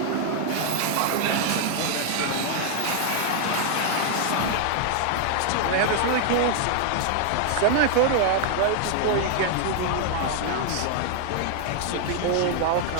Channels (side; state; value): both; different; correlation 0.00